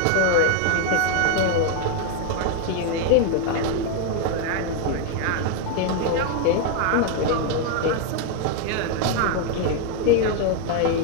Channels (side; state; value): both; different; correlation 0.01